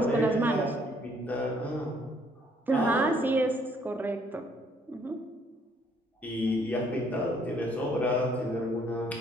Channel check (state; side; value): normal; both; correlation 0.65